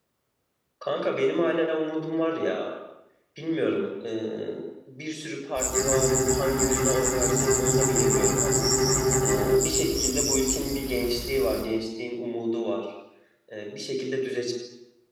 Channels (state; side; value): identical; both; correlation 1.00